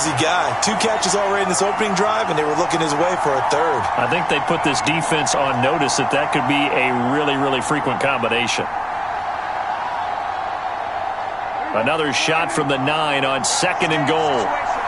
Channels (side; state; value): both; identical; correlation 1.00